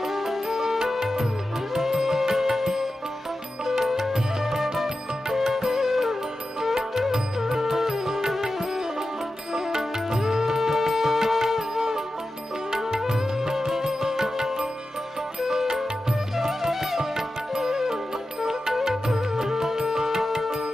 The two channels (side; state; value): both; normal; correlation 0.92